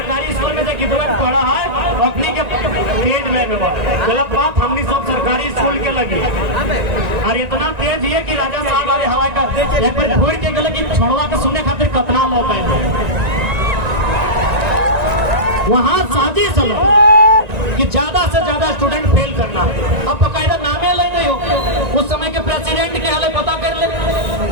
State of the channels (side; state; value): left; late; 1.9 ms